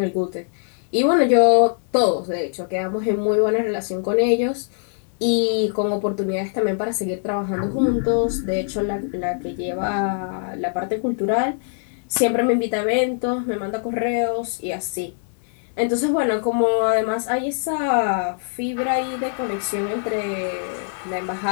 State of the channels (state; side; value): silent; right; digital silence